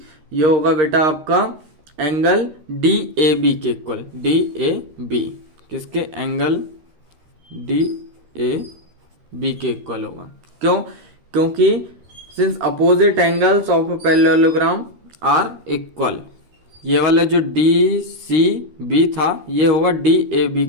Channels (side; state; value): left; late; 13 ms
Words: ये होगा बेटा आपका एंगल डी ए बी के इक्वल। डी ए बी किसके, एंगल डी ए बी के इक्वल होगा। क्यों, क्योंकि since opposite angles of a parallelogram are equal, ये वाला जो डी सी बी था ये होगा डी ए बी